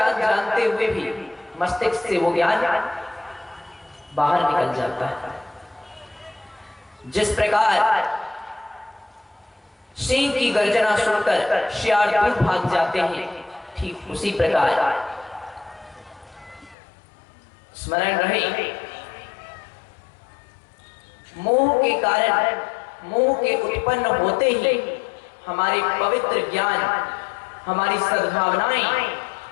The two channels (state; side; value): drops out; right; at 16.8 s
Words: जानते हुए भी मस्तिष्क से वो ज्ञान बाहर निकल जाता है। जिस प्रकार सिंह की गर्जना सुनकर शियार दूर भाग जाते हैं, ठीक उसी प्रकार स्मरण रहे, मोह के कारण, मोह के उत्पन्न होते ही हमारी पवित्र ज्ञान, हमारी सद्भावनाएं,